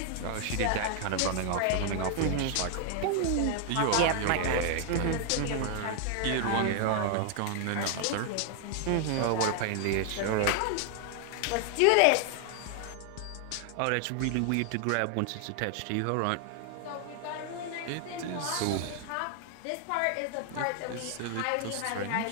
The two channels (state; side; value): different; both; correlation 0.00